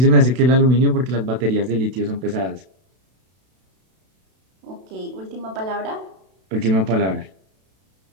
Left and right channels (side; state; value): left; late; 32 ms